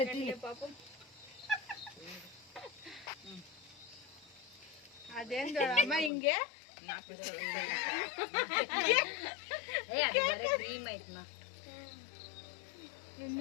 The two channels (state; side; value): drops out; right; at 6.1 s